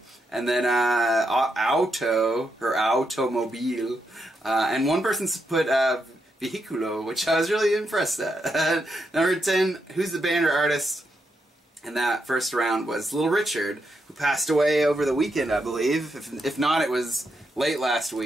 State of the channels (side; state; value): both; normal; correlation 0.82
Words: And then, auto, or automobile. And one person put, vehiculo, which I was really impressed at. Number 10, who's the band or artist? And that first round was Little Richard, who passed away over the weekend, I believe. If not, it was late last